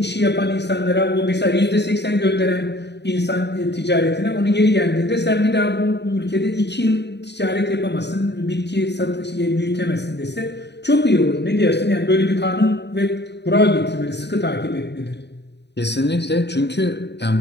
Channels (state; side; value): late; right; 0.50 ms